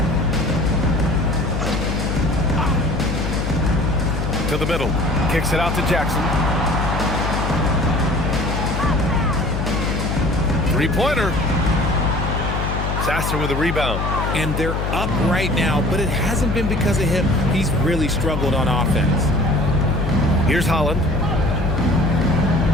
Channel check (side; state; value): left; noise; hum, 1 dB below the sound